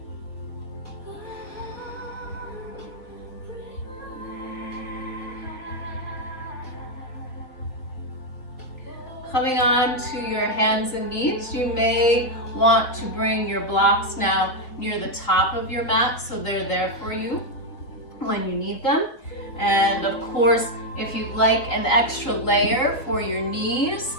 Coming on to your hands and knees, you may want to bring your blocks now near the top of your mat so they're there for you when you need them. And of course, if you'd like an extra layer for your knees,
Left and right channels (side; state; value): right; late; 3.6 ms